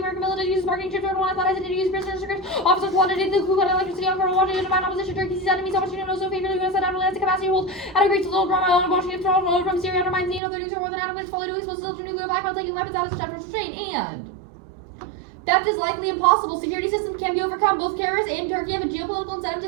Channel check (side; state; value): left; drops out; at 10.4 s